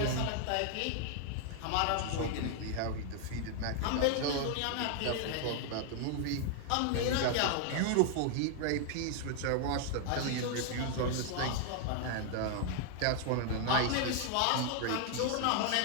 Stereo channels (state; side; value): different; both; correlation 0.00